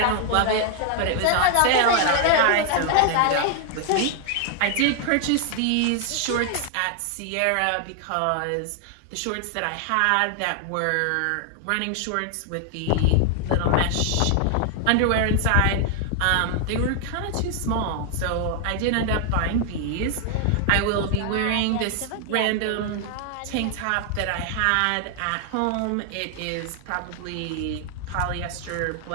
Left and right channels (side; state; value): both; different; correlation 0.00